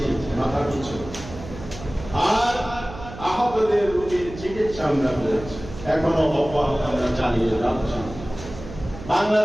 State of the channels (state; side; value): noise; right; hum, 13 dB below the sound